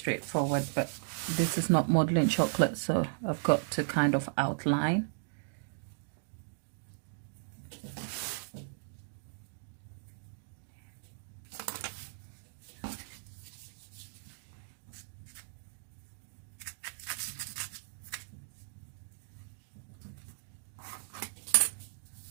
but this is not modeling chocolate, so I've got to kind of outline.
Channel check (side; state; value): left; silent; digital silence